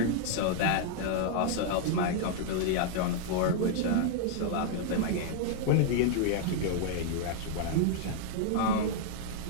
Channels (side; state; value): both; different; correlation -0.01